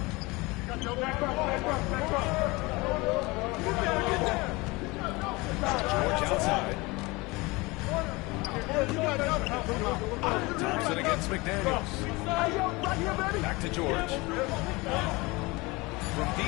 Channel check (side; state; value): right; quieter; 23.8 dB